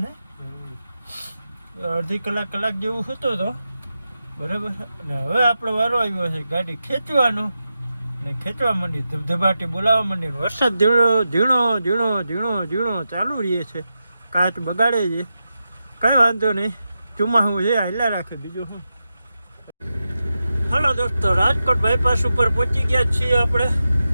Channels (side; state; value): both; inverted; correlation -0.90